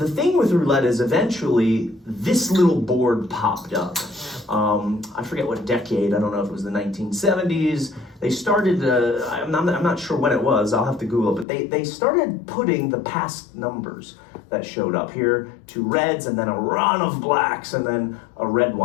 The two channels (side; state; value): right; drops out; at 11.5 s